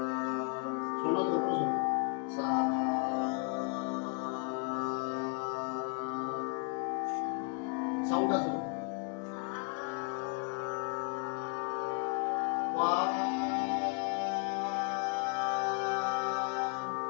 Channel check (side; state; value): right; quieter; 36.6 dB